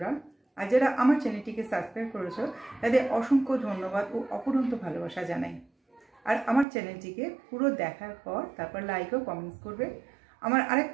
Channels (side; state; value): left; drops out; at 6.7 s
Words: আর যারা আমার চ্যানেলটিকে সাবস্ক্রাইব করেছো তাদের অসংখ্য ধন্যবাদ ও অপরন্ত ভালোবাসা জানাই। আর আমার চ্যানেলটিকে পুরো দেখার পর তারপর লাইক ও কমেন্টস করবে। আমার